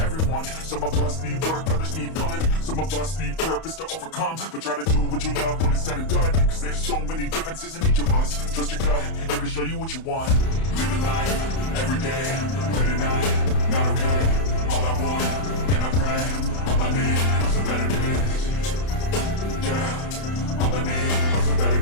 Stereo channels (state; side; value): late; right; 31 ms